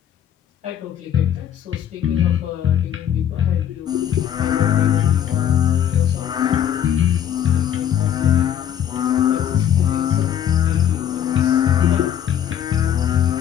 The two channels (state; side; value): quieter; right; 9.7 dB